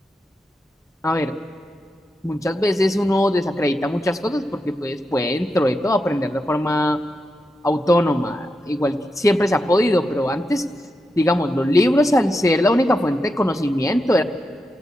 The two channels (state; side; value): normal; both; correlation 0.87